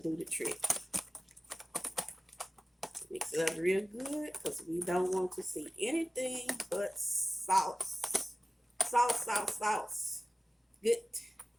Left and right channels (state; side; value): normal; both; correlation 0.97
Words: do the trick. Mix it up real good because we don't want to see anything but sauce. Sauce. Good,